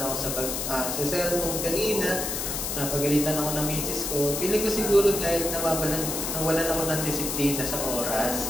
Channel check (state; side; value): noise; left; hiss, 2 dB below the sound